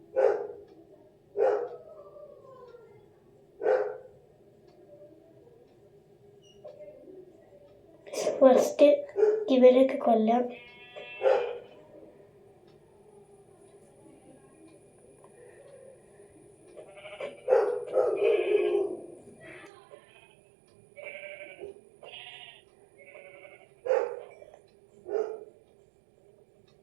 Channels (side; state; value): left; drops out; at 19.7 s